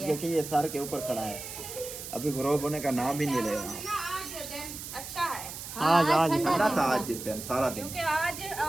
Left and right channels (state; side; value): noise; right; hiss, 10 dB below the sound